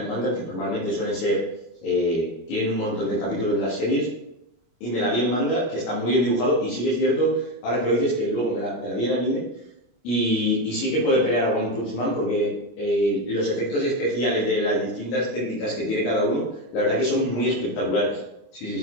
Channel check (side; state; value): right; late; 25 ms